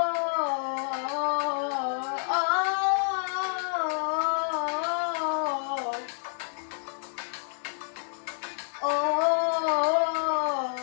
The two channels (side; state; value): right; silent; digital silence